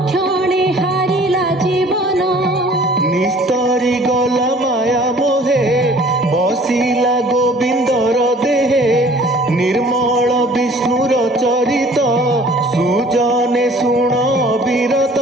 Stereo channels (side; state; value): both; normal; correlation 0.52